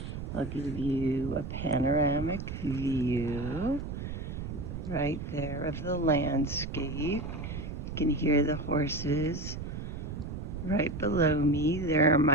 I'll give you a panoramic view right there of the landscape. You can hear the horses right below me. There are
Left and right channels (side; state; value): right; noise; rumble, 6 dB below the sound